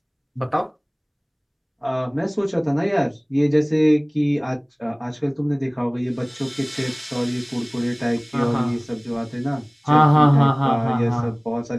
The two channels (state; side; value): identical; both; correlation 1.00